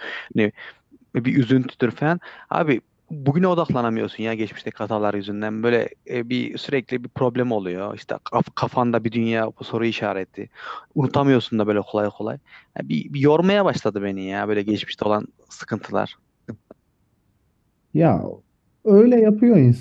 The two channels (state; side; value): identical; both; correlation 1.00